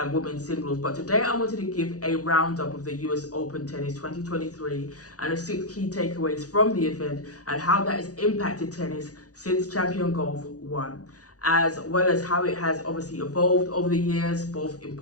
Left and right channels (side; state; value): right; late; 0.67 ms